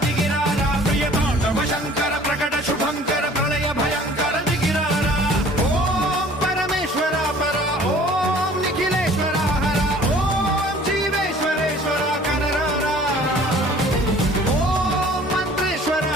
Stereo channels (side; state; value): both; normal; correlation 0.51